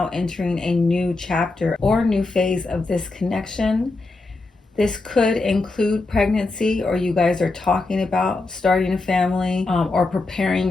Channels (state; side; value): quieter; right; 3.3 dB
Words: entering a new chapter or new phase of this connection. This could include pregnancy, or you guys are talking about starting a family or preparing